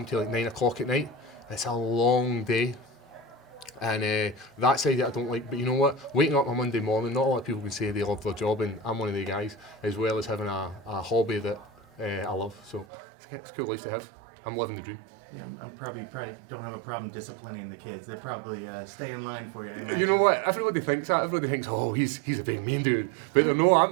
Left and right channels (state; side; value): drops out; left; at 12.9 s